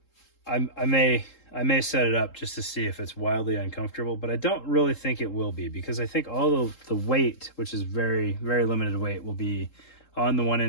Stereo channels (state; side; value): late; right; 3.7 ms